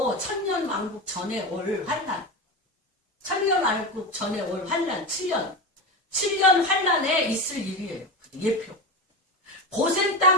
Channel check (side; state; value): both; normal; correlation 0.21